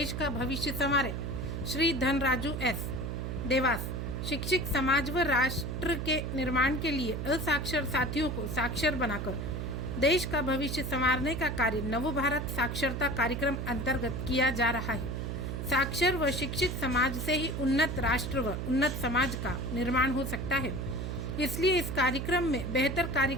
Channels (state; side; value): noise; right; hum, 3 dB below the sound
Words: का भविष्य संवारे। श्री धनराजू एस देवास। शिक्षित समाज व राष्ट्र के निर्माण के लिए असाक्षर साथियों को साक्षर बनाकर देश का भविष्य संवारने का कार्य नवभारत साक्षरता कार्यक्रम अंतर्गत किया जा रहा है। साक्षर व शिक्षित समाज से ही उन्नत राष्ट्र व उन्नत समाज का निर्माण हो सकता है, इसलिए इस कार्यक्रम में बेहतर कार्य